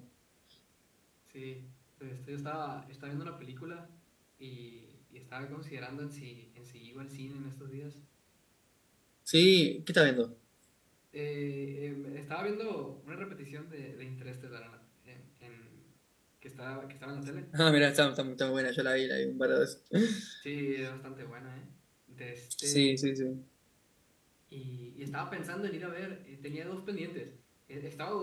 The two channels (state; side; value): identical; both; correlation 1.00